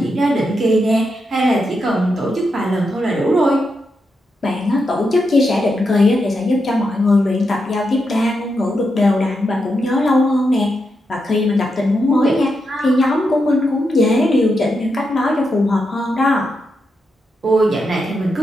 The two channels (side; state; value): both; normal; correlation 0.85